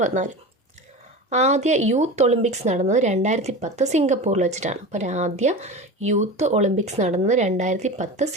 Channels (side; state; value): both; normal; correlation 0.29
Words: ആദ്യ യൂത്ത് ഒളിമ്പിക്സ് നടന്നത് 2010 സിംഗപ്പൂരിൽ വെച്ചിട്ടാണ്. അപ്പോൾ ആദ്യ യൂത്ത് ഒളിമ്പിക്സ് നടന്നത് 2010